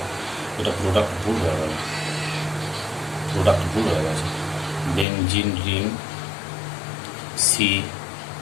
এটা প্রোডাক্ট ভুল হয়ে গেল, benzene ring C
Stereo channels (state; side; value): drops out; right; at 5.1 s